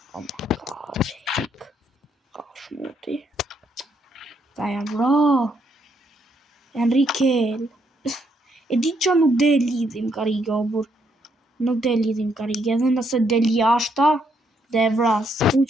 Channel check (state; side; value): normal; both; correlation 0.74